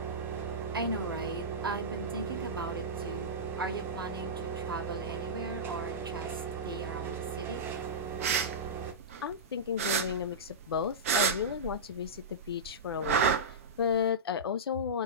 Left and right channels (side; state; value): both; normal; correlation -0.14